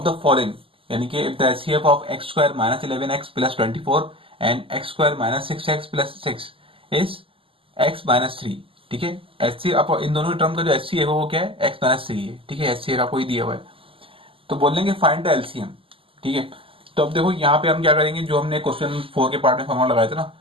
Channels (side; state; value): left; late; 0.26 ms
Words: the following, यानी कि if the HCF of x square minus 11x plus 24 and x square minus 6x plus 6 is x minus 3। ठीक है, एचसीएफ इन दोनों टर्म का जो एचसीएफ है वो क्या है, x माइनस 3 है। ठीक है, एचसीएफ आपको ही दिया हुआ है, तो बोल लेंगे फाइंड द एलसीएम। ठीक है, तो अब देखो यहाँ पे हम क्या करेंगे, जो हमने क्वेश्चन 4 के पार्ट में फॉर्मूला लगाया था ना